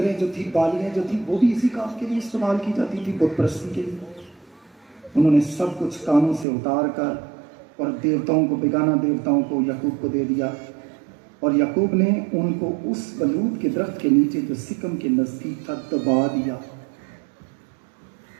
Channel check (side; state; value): left; drops out; at 6.5 s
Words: जो थी, बालियां जो थी, वो भी इसी काम के लिए इस्तेमाल की जाती थी, बुत परस्ती के लिए। उन्होंने सब कुछ कानों से उतार कर और देवताओं को, बेगाना देवताओं को याकूब को दे दिया। और याकूब ने उनको उस बलूत के दरख्त के नीचे जो सिकम के नजदीक था दबा दिया।